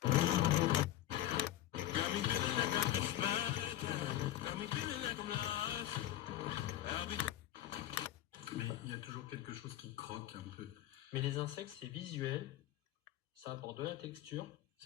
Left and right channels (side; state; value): right; quieter; 13.5 dB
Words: Mais il y a toujours quelque chose qui croque un peu. Mais les insectes, c'est visuel, ça apporte de la texture,